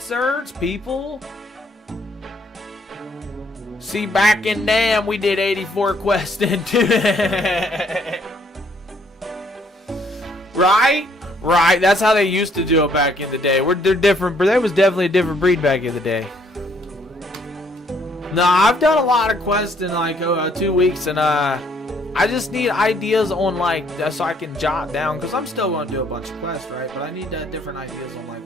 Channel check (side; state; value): both; normal; correlation 0.66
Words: People? See, back in damn, we did 84 quests into it. Right? Right. That's how they used to do it back in the day. They're different, but there was definitely a different breed back in the day. No, I've done a lot of quests in like 2 weeks, and I just need ideas on like so I can jot down because I'm still going to do a bunch of quests, right? But I need different ideas on like